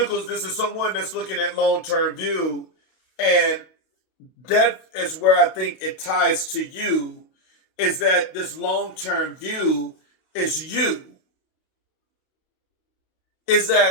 this is someone that's looking at long-term view, and that is where I think it ties to you, is that this long-term view is you. Is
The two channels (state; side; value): late; right; 32 ms